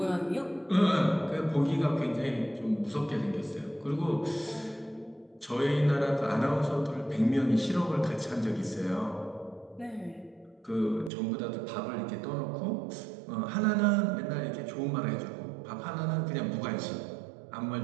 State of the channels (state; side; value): drops out; left; at 11.1 s